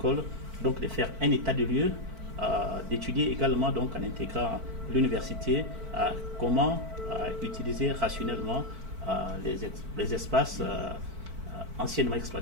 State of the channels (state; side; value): late; left; 4.5 ms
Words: donc de faire un état de lieu, d'étudier également donc en intégrant l'université comment utiliser rationnellement les espaces anciennement